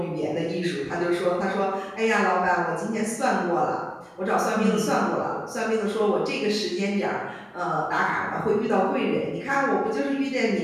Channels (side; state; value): both; identical; correlation 1.00